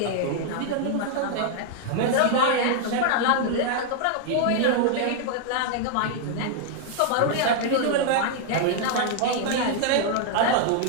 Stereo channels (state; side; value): different; both; correlation 0.00